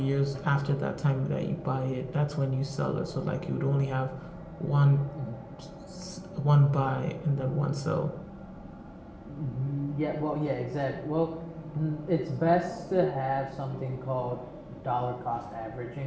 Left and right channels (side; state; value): both; identical; correlation 1.00